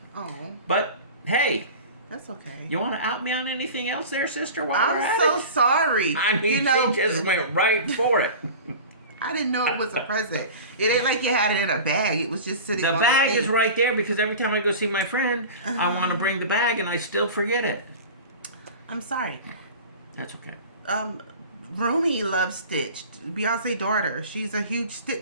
Oh. But Hey, That's okay. you want to out me on anything else there, sister? While we're I'm at so it? sorry. I mean, you know, she just went right for it. I didn't know it was a present. It ain't like you had it in a bag. It was just sitting The on bag the is thing. right there because every time I go see my friend, I want to bring the bag and I still forget it. I'm sorry. That's okay. Rumi loves Stitch. Beyonce's daughter. She's a huge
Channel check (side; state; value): both; inverted; correlation -0.36